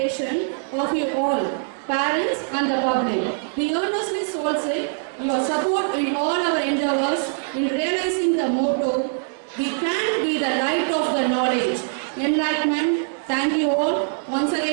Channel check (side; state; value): left; silent; digital silence